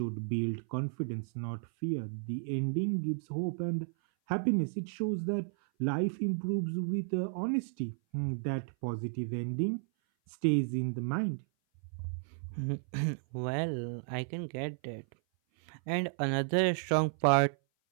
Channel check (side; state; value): left; silent; 56 dB below the other